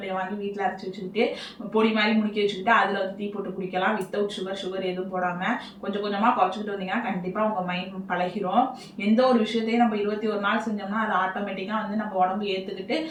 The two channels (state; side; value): identical; both; correlation 1.00